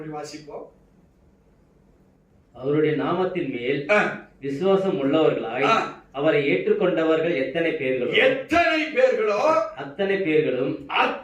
வாசிப்போம். அவருடைய நாமத்தின் மேல் விசுவாசம் உள்ளவர்களாய் அவரை ஏற்றுக்கொண்டவர்கள் எத்தனை பேர்களோ அத்தனை பேர்களும்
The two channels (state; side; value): identical; both; correlation 1.00